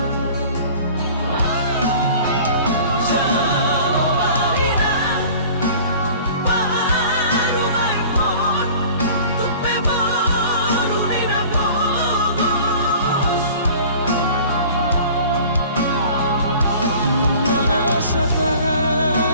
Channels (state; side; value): inverted; both; correlation -0.45